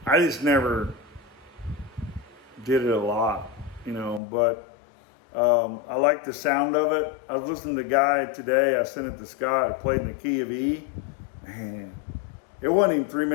I just never did it a lot, you know, but I like the sound of it. I was listening to the guy today, I sent it to Scott, I played in the key of E. Man, it wasn't even 3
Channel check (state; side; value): drops out; right; at 4.2 s